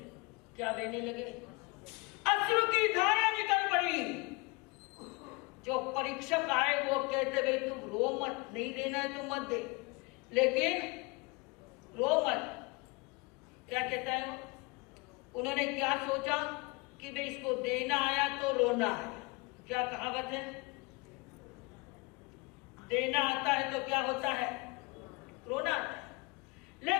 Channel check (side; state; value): right; quieter; 26.8 dB